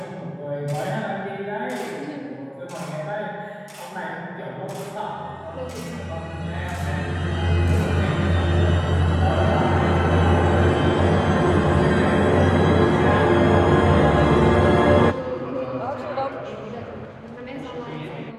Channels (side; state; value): both; identical; correlation 1.00